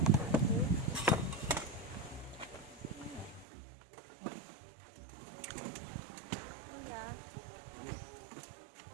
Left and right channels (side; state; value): left; drops out; at 3.5 s